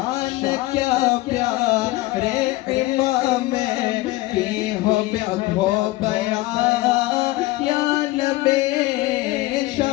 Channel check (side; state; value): right; quieter; 19.0 dB